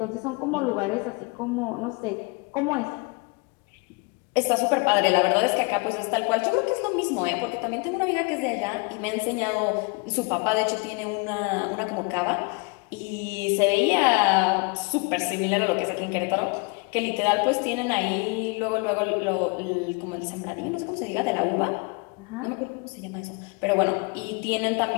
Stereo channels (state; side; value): quieter; right; 30.6 dB